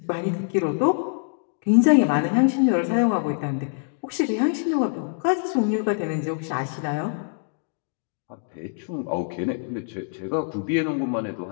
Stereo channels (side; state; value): right; silent; digital silence